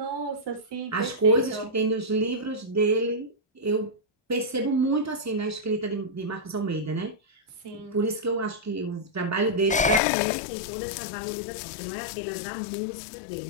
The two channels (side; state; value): right; drops out; at 10.0 s